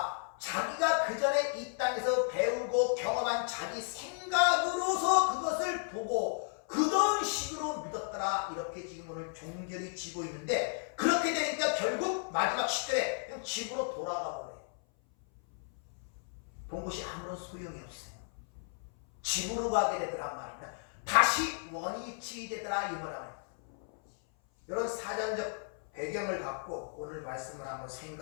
자기가 그 전에 이 땅에서 배우고 경험한 자기 생각으로서 그것을 보고 그런 식으로 믿었더라. 이렇게 지금 오늘 종결이 지고 있는데 그렇게 되니까 결국 마지막 시절에 그냥 집으로 돌아가 버려요. 본 것이 아무런 소용이 없어요. 집으로 가게 되더란 말입니다. 다시 원위치 되더라 이 말입니다. 이런 사전적 배경을 갖고 오늘 말씀을 한번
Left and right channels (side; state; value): right; silent; 55 dB below the other